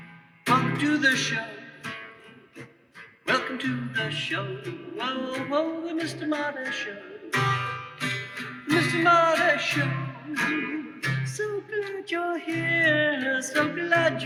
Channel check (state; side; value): identical; both; correlation 1.00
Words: Welcome to the show. Welcome to the show. Whoa, whoa, the Mr. Marty Show. Mr. Marty Show. So glad you're here. So glad